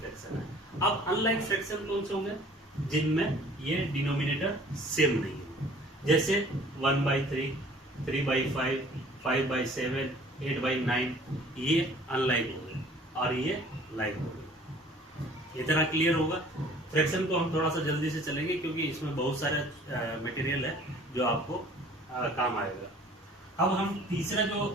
है। अब अनलाइक फ्रैक्शन कौन से होंगे, जिनमें ये डिनोमिनेटर सेम नहीं हो, जैसे 1/3, 3/5, 5/7, 8/9, ये अनलाइक हो गए और ये लाइक हो गए। इतना क्लियर होगा। फ्रैक्शन को हम थोड़ा सा जल्दी से चलेंगे क्योंकि इसमें बहुत सारे मटेरियल है जो आपको काम आएगा। अब हम तीसरा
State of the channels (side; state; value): both; normal; correlation 0.51